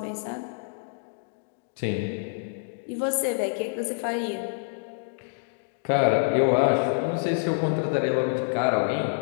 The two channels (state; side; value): silent; right; digital silence